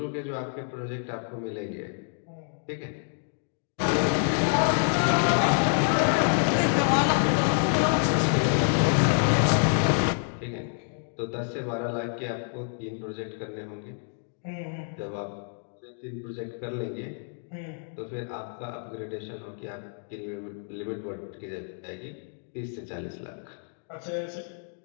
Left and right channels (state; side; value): silent; right; 59 dB below the other